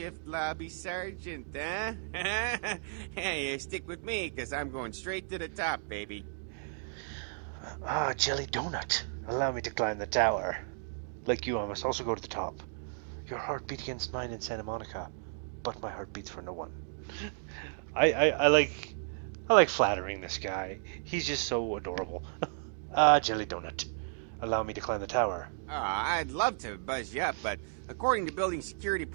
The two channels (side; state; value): left; silent; digital silence